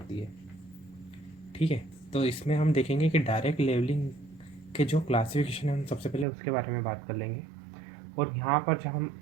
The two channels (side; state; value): left; drops out; at 6.2 s